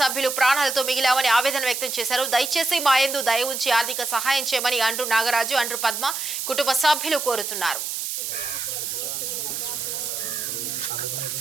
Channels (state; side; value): noise; right; hiss, 3 dB below the sound